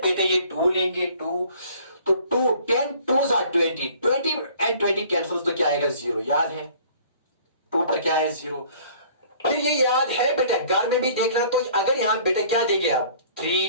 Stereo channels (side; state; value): both; inverted; correlation -0.53